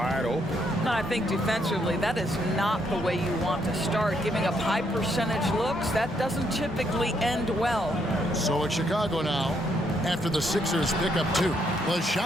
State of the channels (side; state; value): both; normal; correlation 0.74